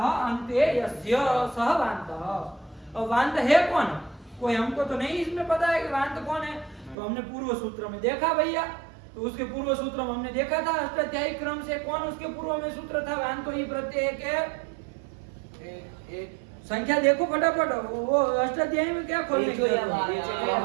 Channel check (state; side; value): drops out; left; at 7.0 s